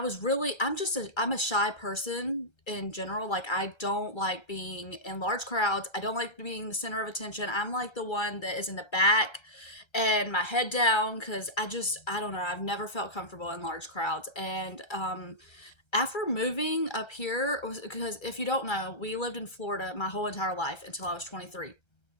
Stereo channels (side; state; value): right; late; 1.3 ms